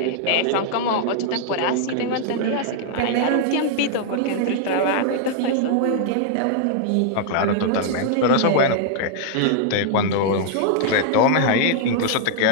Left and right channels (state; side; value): different; both; correlation -0.01